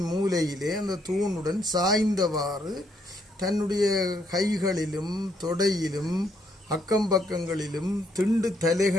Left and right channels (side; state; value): both; normal; correlation 0.72